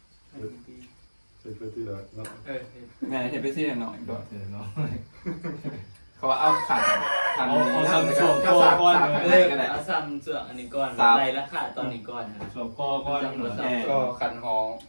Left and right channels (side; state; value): both; inverted; correlation -1.00